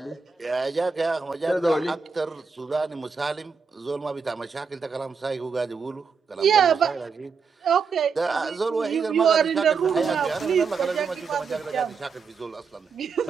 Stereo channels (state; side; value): quieter; left; 5.4 dB